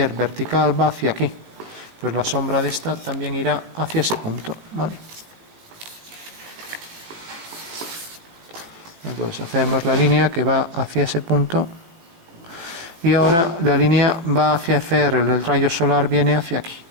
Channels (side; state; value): left; late; 18 ms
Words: vertical va hacia aquí. Pues la sombra de esta también irá hacia ese punto, ¿vale? Entonces hacemos la línea que va hacia ese punto y ahora la línea va hacia FR, el rayo solar viene hacia aquí.